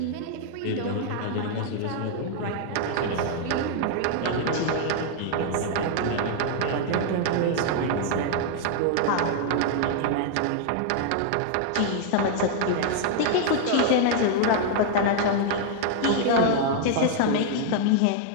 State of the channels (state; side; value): different; both; correlation 0.00